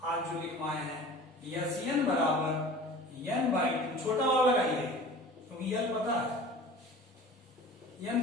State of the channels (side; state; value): both; normal; correlation 0.41